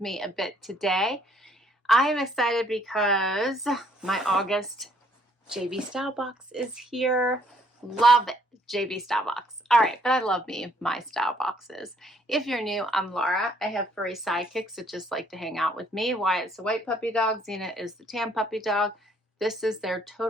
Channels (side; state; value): both; normal; correlation 0.65